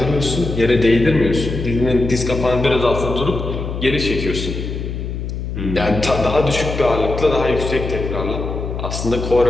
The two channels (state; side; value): noise; left; hum, 5 dB below the sound